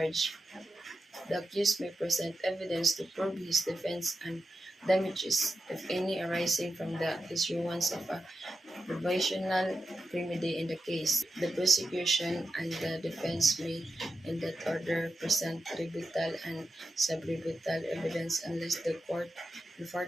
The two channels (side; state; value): both; normal; correlation 0.90